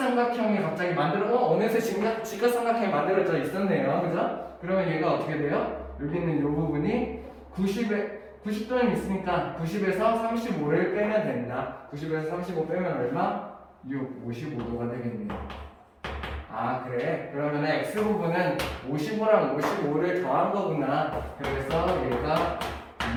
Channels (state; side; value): identical; both; correlation 1.00